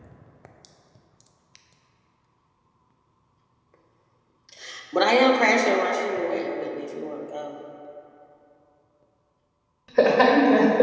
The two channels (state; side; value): identical; both; correlation 1.00